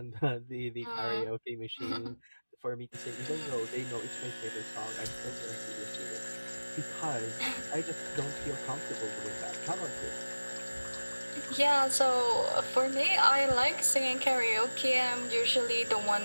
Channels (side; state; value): both; inverted; correlation -1.00